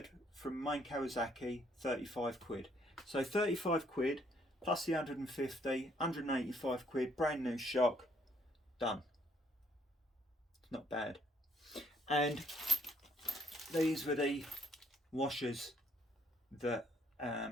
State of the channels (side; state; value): both; normal; correlation 0.68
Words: from main Kawasaki, 35 quid. So 35 quid plus the 150, 185 quid, brand new shock, done. It's not bad. And these were the washers that